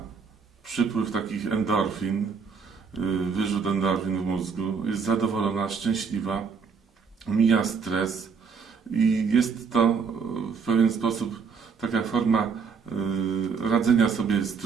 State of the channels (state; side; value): quieter; left; 5.8 dB